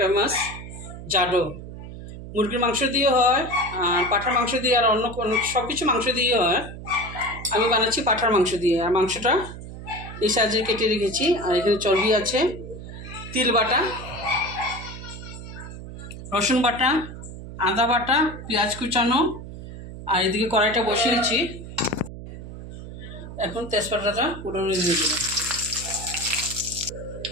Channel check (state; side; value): noise; right; hum, 12 dB below the sound